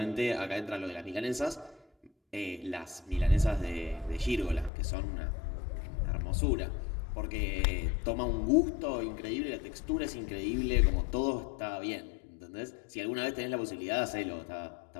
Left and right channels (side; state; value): right; drops out; at 4.7 s